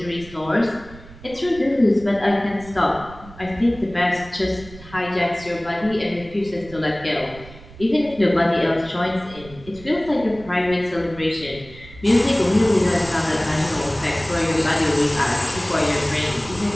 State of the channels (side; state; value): right; noise; rumble, 19 dB below the sound